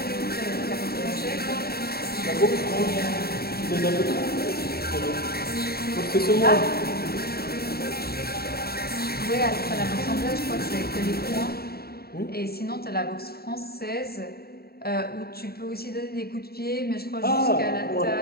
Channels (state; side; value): late; right; 0.45 ms